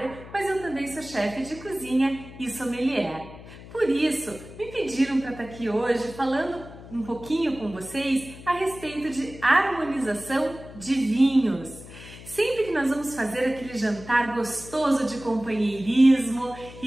mas eu também sou chefe de cozinha e sommelier. Por isso, me pediram para estar aqui hoje falando um pouquinho com vocês a respeito de harmonização de vinhos. Sempre que nós vamos fazer aquele jantar gostoso de companheirismo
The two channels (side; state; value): left; noise; hum, 16 dB below the sound